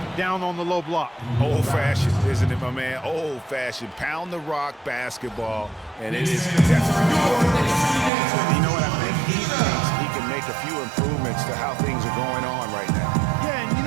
down on the low block. Old-fashioned, isn't it, my man? Old-fashioned. Pound the rock basketball, and it is definitely. You know what I think? He thinks he can make a few improvements to how things are going on right now. Yeah, and you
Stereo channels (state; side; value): drops out; left; at 8.1 s